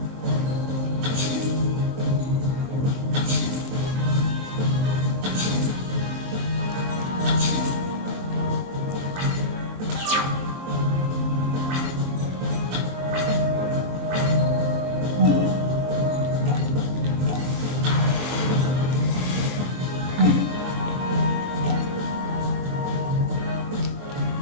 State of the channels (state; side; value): late; left; 23 ms